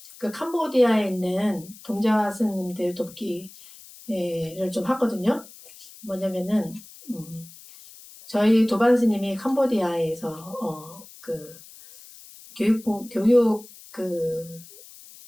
그 캄보디아에 있는 동자 스님들 돕기를 좀 하거든요. 뭐냐면은 저희 도반 스님이 캄보디아에서 그 교육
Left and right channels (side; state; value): left; noise; hiss, 20 dB below the sound